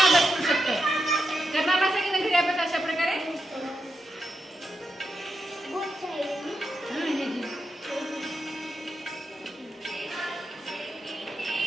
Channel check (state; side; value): normal; both; correlation 0.86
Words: करू शकता. करणार असेल की घरी अभ्यास अशा प्रकारे.